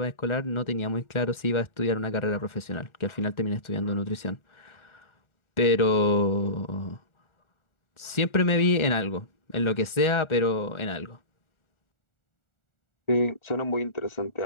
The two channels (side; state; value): right; late; 1.4 ms